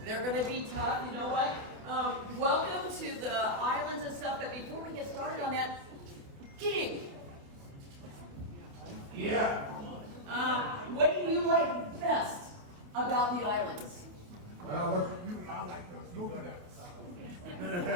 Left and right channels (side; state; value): left; late; 28 ms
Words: gonna be tough. You know what? Welcome to the islands and stuff. But before we get started on that, King. Yeah. What do you like best about the islands? Well, look at you. I like those coconuts.